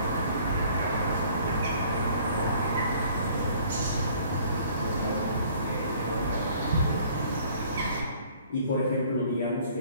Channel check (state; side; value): inverted; both; correlation -0.56